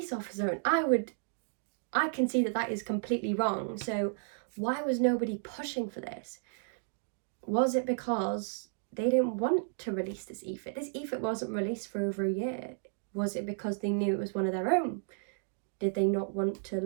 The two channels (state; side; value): silent; left; digital silence